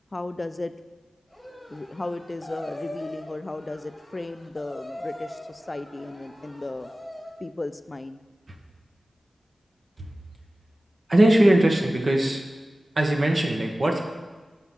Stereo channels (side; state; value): both; normal; correlation 0.96